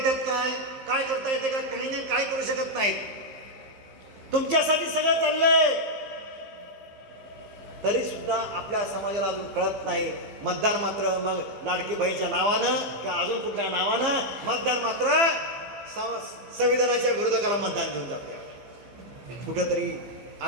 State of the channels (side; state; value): left; late; 15 ms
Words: काय करता येते का, काही नाही काय करू शकत नाहीत. तुमच्यासाठी सगळं चाललंय तरी सुद्धा आपल्या समाजाला अजून कळत नाही. मतदान मात्र मग लाडकी बहीणच्या नावानं किंवा अजून कुठल्या नावानं मतदान मात्र संविधानाच्या विरोधकाला मतदान देऊन जाते. कुठेतरी